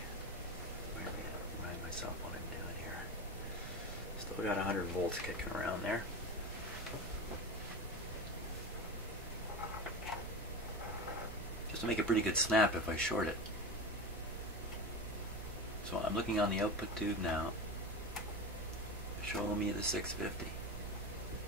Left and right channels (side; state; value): right; noise; hum, 10 dB below the sound